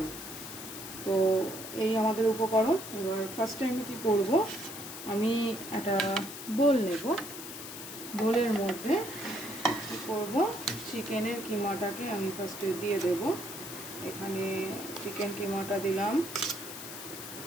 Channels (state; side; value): noise; left; hiss, 10 dB below the sound